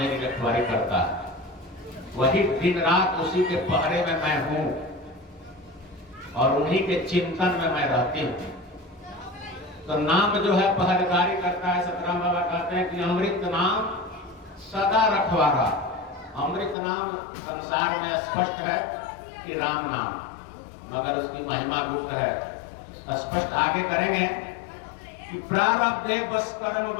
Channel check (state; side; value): drops out; right; at 16.8 s